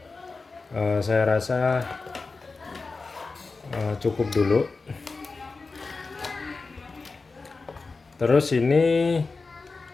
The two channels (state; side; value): quieter; right; 4.0 dB